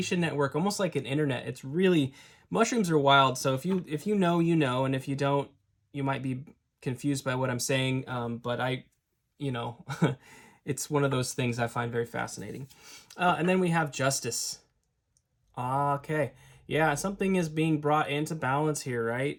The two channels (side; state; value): both; identical; correlation 1.00